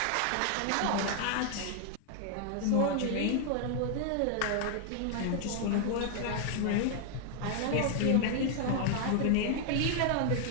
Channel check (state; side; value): different; both; correlation 0.00